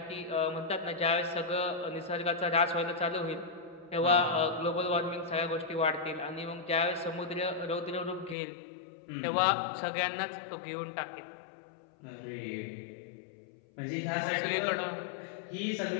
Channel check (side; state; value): right; drops out; at 8.3 s